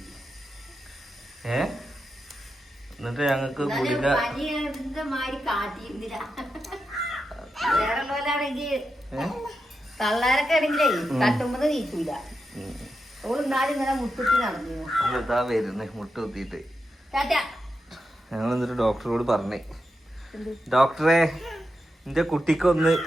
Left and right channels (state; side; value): normal; both; correlation 0.88